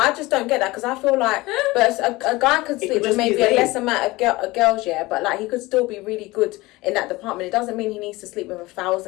just don't get that because I feel like, but a guy could sleep with maybe a less amount of girls, but like he could still be really good in that department. It doesn't mean he needs to sleep with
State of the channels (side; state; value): right; quieter; 20.7 dB